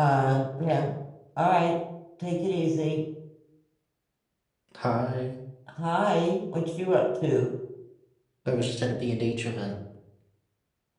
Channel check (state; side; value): identical; both; correlation 1.00